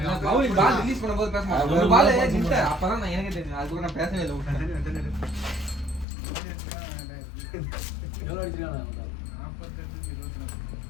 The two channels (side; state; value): right; drops out; at 6.1 s